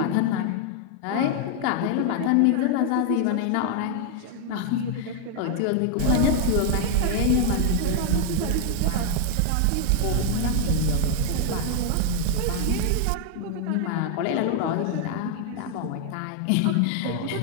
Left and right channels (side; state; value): both; different; correlation 0.00